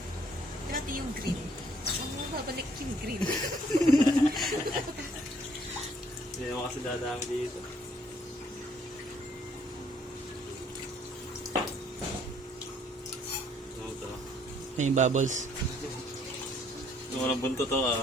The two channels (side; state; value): both; normal; correlation 0.64